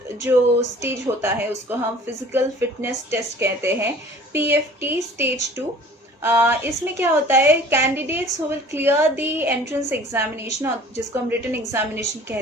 जो स्टेज होता है उसको हम फिजिकल फिटनेस टेस्ट कहते हैं, PFT स्टेज 2। इसमें क्या होता है, candidates who will clear the entrance examination, जिसको हम रिटन एग्जामिनेशन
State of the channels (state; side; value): normal; both; correlation 0.48